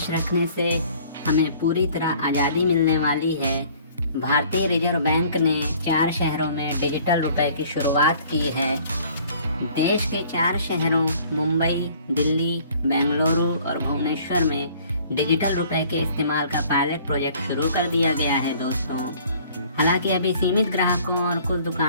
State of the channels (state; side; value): inverted; both; correlation -0.54